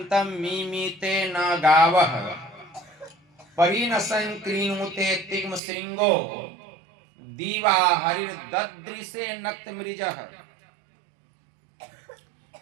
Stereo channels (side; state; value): left; drops out; at 5.6 s